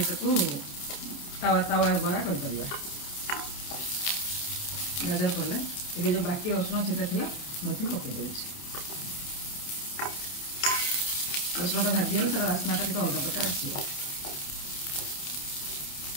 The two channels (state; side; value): late; right; 28 ms